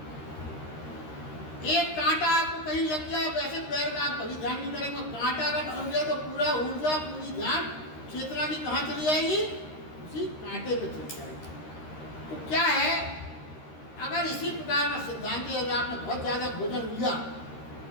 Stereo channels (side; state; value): right; late; 13 ms